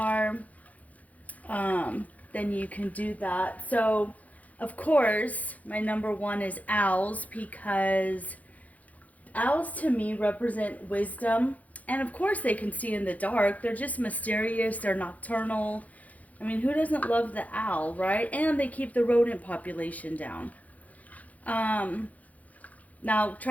then you can do that. So of course, my number 1 is owls, because owls to me represent wisdom. And of course they can see in the dark. They're just mysterious. They're nocturnal. I mean, who doesn't love the owl, right? And they keep the rodent population down. Now,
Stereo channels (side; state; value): right; late; 0.074 ms